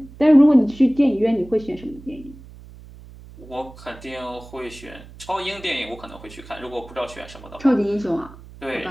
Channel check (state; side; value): noise; right; hum, 19 dB below the sound